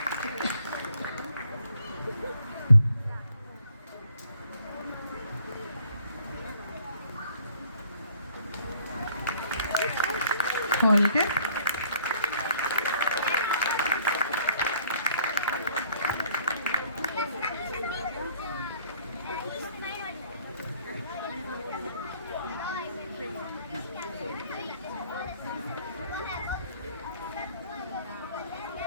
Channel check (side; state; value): both; inverted; correlation -0.60